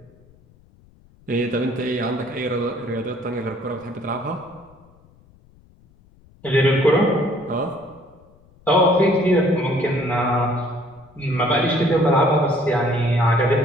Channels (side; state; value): left; noise; rumble, 29 dB below the sound